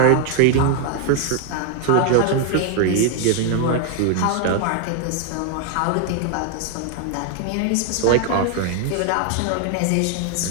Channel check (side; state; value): both; different; correlation 0.00